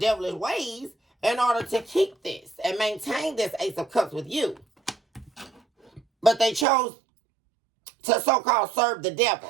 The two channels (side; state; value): left; drops out; at 6.7 s